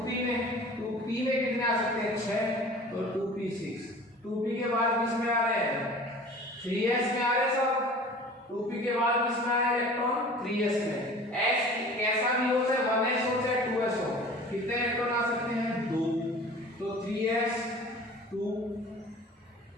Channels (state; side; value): normal; both; correlation 0.43